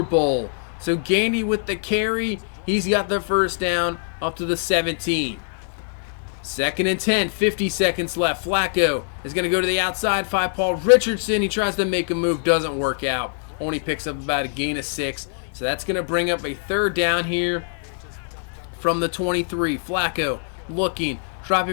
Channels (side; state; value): right; silent; 63 dB below the other